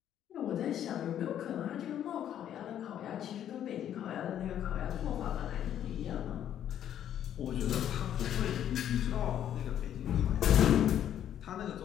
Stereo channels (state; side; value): quieter; right; 10.4 dB